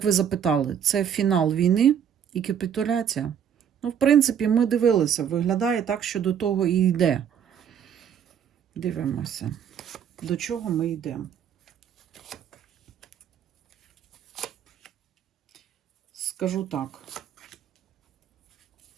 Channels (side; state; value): left; quieter; 8.5 dB